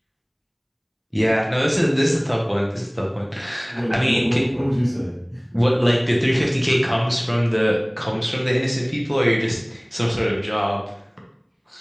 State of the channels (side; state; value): both; identical; correlation 1.00